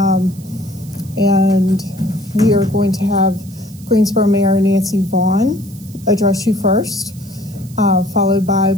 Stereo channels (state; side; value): noise; right; hiss, 23 dB below the sound